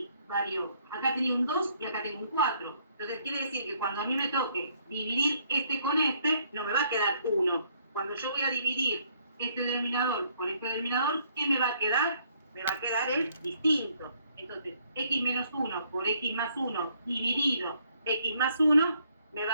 varió. Acá tenía un 2 y acá tengo un 4. Entonces quiere decir que cuando a mí me toque dividir este con este, no me va a quedar 1. Cuando yo voy a dividir este denominador por este denominador, ¿qué me va a quedar? Me va a quedar el distinto. Entonces, x menos 1 por x más 1 dividido x más 1, me va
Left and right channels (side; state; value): both; inverted; correlation -0.67